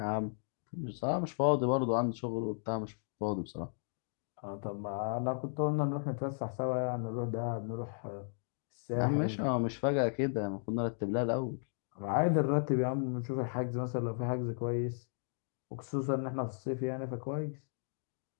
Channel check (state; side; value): silent; right; digital silence